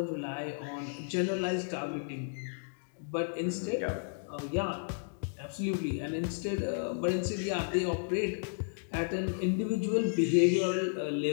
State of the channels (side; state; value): right; silent; digital silence